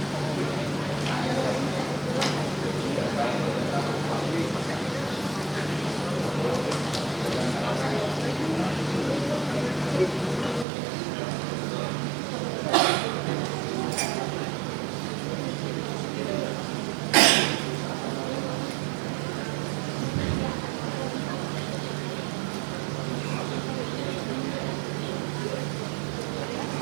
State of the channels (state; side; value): drops out; left; at 10.7 s